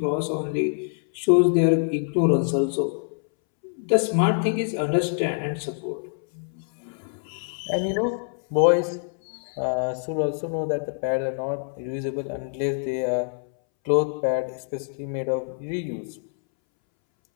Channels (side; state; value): right; silent; 62 dB below the other